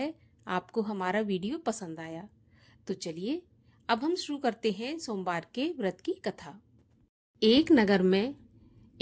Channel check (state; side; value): identical; both; correlation 1.00